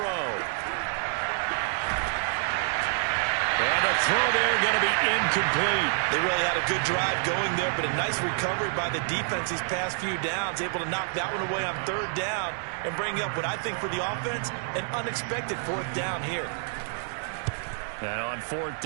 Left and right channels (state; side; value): silent; left; 59 dB below the other